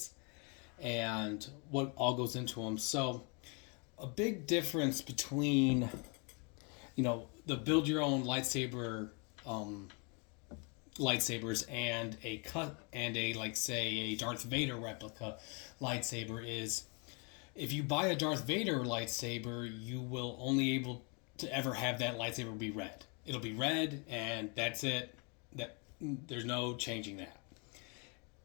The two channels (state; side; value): quieter; right; 34.0 dB